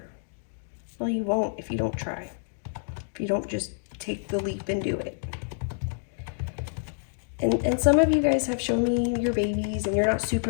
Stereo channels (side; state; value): right; silent; digital silence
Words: Well, you won't if you don't try. If you don't just take the leap and do it. And some of you guys have shown me your babies and you're not